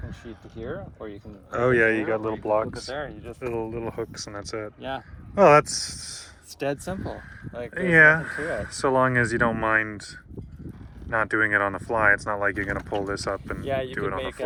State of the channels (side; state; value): both; identical; correlation 1.00